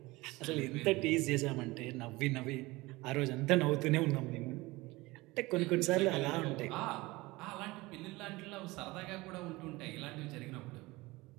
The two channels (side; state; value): left; quieter; 21.3 dB